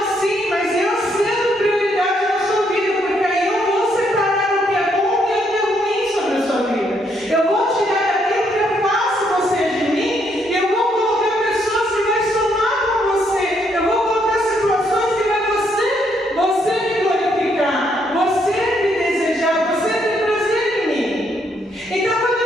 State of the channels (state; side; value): normal; both; correlation 0.73